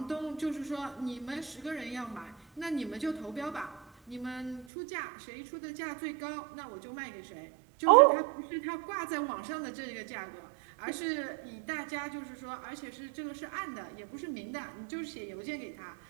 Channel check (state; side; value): drops out; left; at 4.7 s